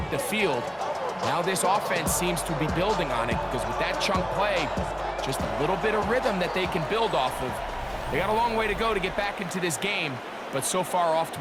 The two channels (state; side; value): identical; both; correlation 1.00